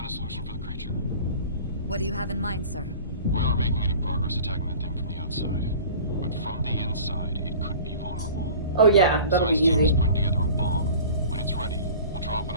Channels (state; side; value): inverted; both; correlation -0.42